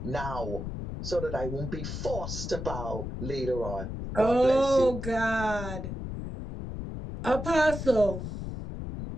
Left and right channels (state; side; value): noise; left; rumble, 6 dB below the sound